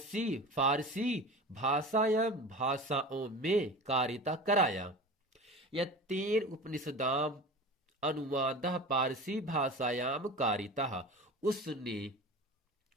फारसी भाषायाम, भाषाओं में कारिता कराया। यत्तेन उपनिषदाम अनुवाद पारसी भाषायाम कारिता, उसने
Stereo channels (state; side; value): normal; both; correlation 0.34